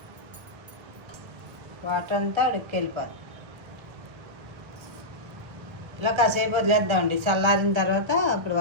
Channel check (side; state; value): left; late; 1.4 ms